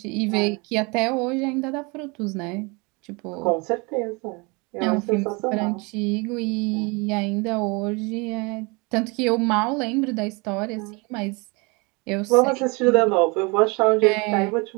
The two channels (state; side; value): quieter; left; 28.5 dB